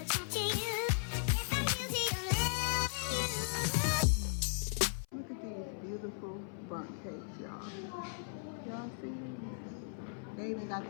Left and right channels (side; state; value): right; silent; 53 dB below the other